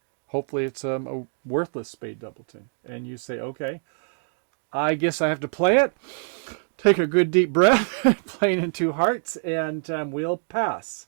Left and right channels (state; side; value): silent; left; digital silence